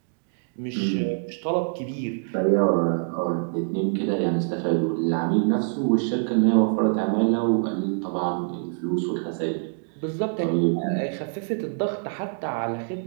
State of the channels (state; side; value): silent; left; 62 dB below the other